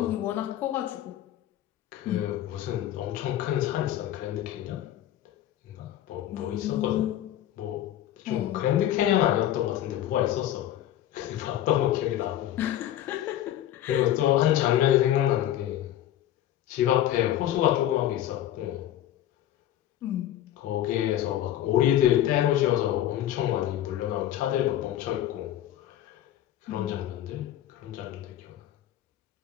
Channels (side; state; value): right; quieter; 12.3 dB